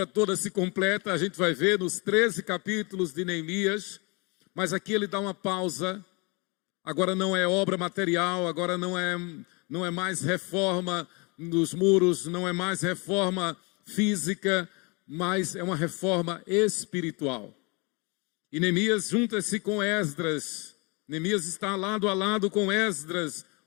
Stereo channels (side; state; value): right; quieter; 29.9 dB